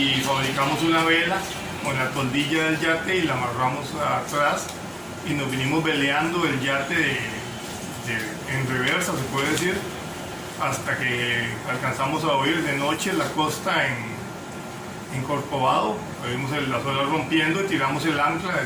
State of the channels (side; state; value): both; identical; correlation 1.00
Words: fabricamos una vela con la toldilla del yate y la amarramos atrás y nos vinimos veleando el yate en reversa, se puede decir, hasta que alcanzamos a oír de noche la costa en Corcovado. Vimos las olas rompiendo y tiramos el ancla,